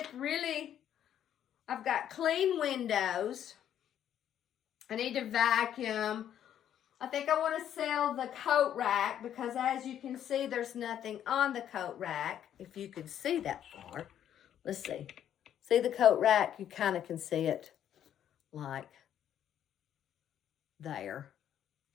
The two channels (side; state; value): right; quieter; 10.2 dB